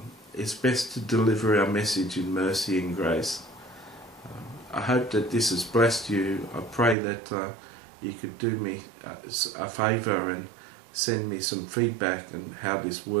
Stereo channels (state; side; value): drops out; left; at 7.0 s